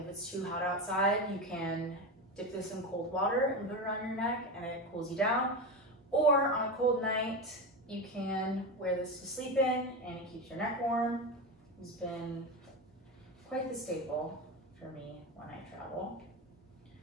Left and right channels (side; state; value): both; normal; correlation 0.19